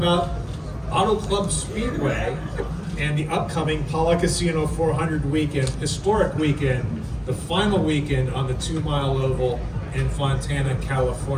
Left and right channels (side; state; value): both; identical; correlation 1.00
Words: Auto Club Speedway and the upcoming Pala Casino 400 weekend, historic weekend, the final weekend on the 2-mile oval in Fontana,